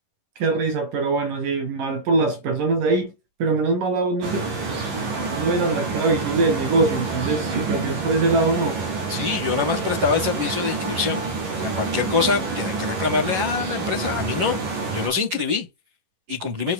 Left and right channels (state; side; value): late; left; 11 ms